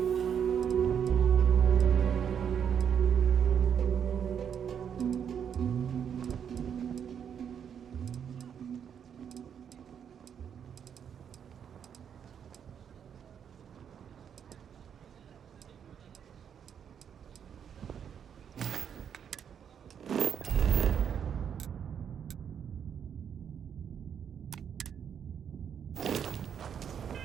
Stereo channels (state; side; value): quieter; left; 8.1 dB